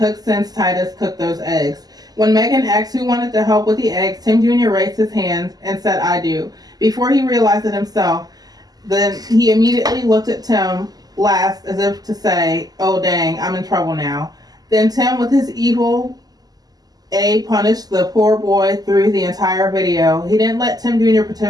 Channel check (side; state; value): left; late; 0.19 ms